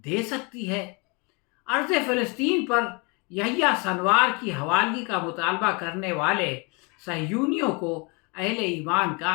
دے سکتی ہے؟ ارض فلسطین پر یحییٰ سنوار کی حوالگی کا مطالبہ کرنے والے صہیونیوں کو اہل ایمان کا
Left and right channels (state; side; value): quieter; right; 30.8 dB